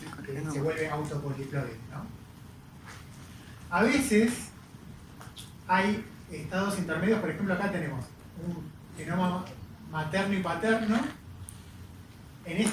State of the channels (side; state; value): both; identical; correlation 1.00